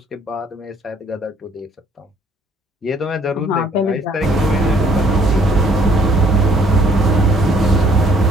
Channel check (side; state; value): both; normal; correlation 0.62